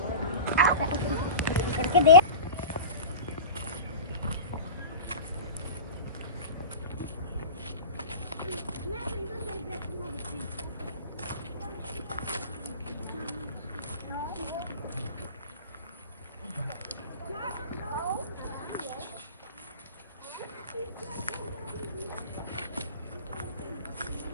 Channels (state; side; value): inverted; both; correlation -0.31